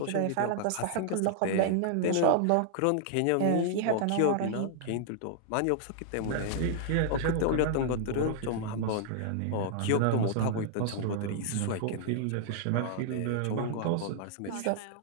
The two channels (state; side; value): different; both; correlation -0.01